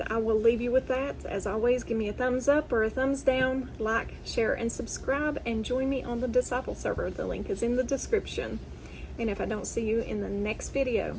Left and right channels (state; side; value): identical; both; correlation 1.00